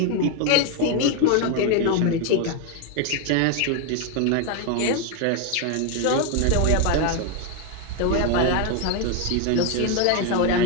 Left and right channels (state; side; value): different; both; correlation 0.01